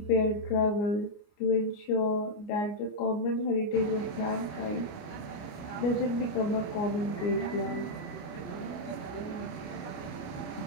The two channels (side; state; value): right; late; 29 ms